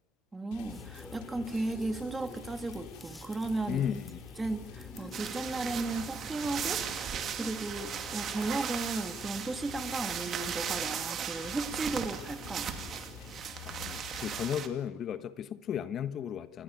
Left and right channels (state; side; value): normal; both; correlation 0.74